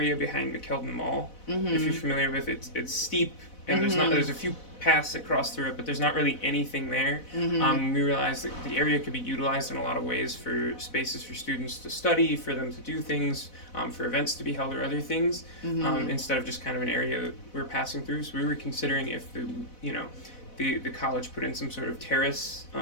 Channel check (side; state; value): right; late; 4.0 ms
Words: behind McKeldin Mall. If you're familiar with it, it's steep and there's a few paths that cross through it, but there's not really anything there. We realized that the area could be utilized in a lot of ways for spaces for students to study, for them to do things, for events to be held or other things, instead of just kind of an area that we're passing through. So we were considering if the college put in some sort of terrace